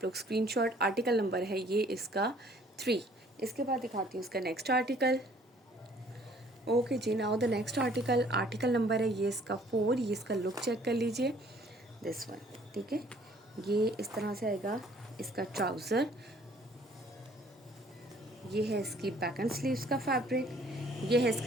लोग स्क्रीनशॉट। आर्टिकल नंबर है ये इसका 3। इसके बाद दिखाती हूँ इसका next article. Okay ji, now the next article, article number है ये इसका 4। ये इसका लुक चेक कर लीजिए, दिस वन। ठीक है, ये इस तरह से आएगा इसका ट्राउज़र। ये है इसकी बैक एंड स्लीव्स का फैब्रिक। ये है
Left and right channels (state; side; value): normal; both; correlation 0.58